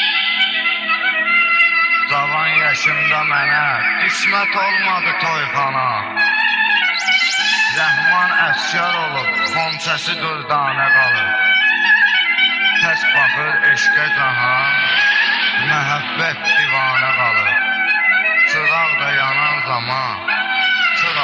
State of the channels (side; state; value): both; identical; correlation 1.00